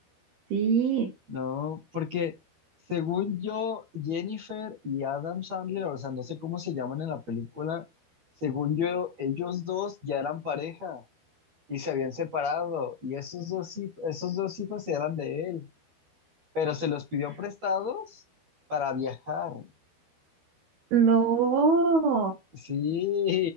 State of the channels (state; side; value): late; left; 12 ms